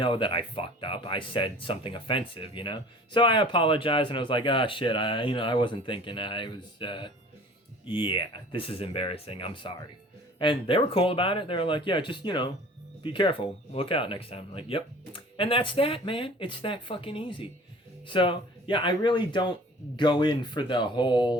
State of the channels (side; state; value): both; normal; correlation 0.47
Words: that I fucked up. I said something offensive, you know? So I apologized, and I was like, "Ah, shit, I wasn't thinking. I was, yeah, this is embarrassing. I'm sorry." And they were cool about it. They were like, "Yeah, just, you know, be careful. Look out next time." I'm like, "Yep." And that's that, man. It's that fucking easy. So, yeah, I really don't go in for the whole,